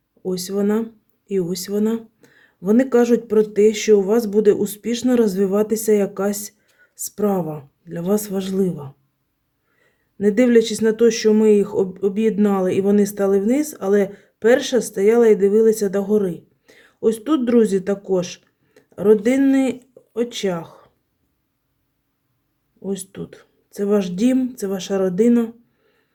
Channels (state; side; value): identical; both; correlation 1.00